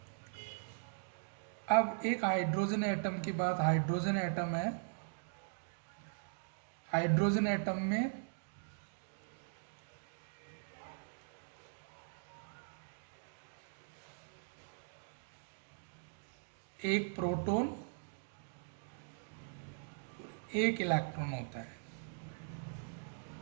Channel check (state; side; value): silent; left; digital silence